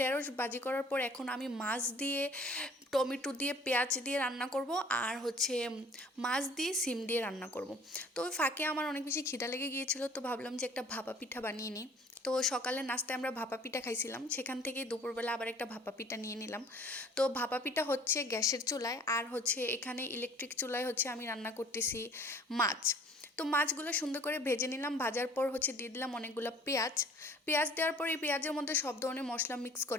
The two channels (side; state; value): both; normal; correlation 0.51